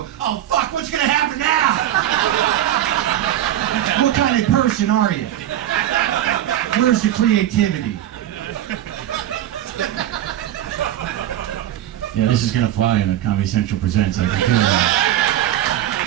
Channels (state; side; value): quieter; left; 12.4 dB